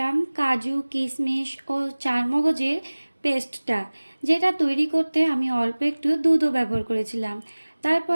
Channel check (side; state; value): both; inverted; correlation -1.00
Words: কাজু, কিশমিশ ও চারমগজের পেস্টটা, যেটা তৈরি করতে আমি অল্প একটু দুধও ব্যবহার করেছিলাম।